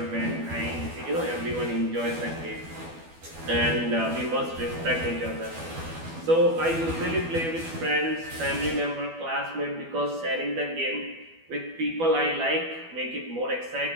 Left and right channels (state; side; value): late; left; 12 ms